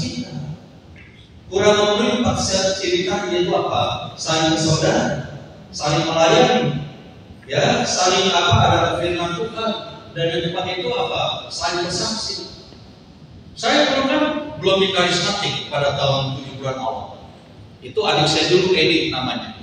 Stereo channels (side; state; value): both; identical; correlation 1.00